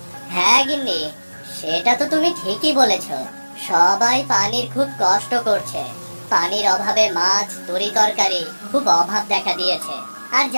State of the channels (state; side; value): inverted; both; correlation -1.00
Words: হ্যাঁ গিন্নি, সেটা তো তুমি ঠিকই বলেছো। সবাই পানির খুব কষ্ট করছে। পানির অভাবে মাছ, তরি তরকারি খুব অভাব দেখা দিয়েছে। আর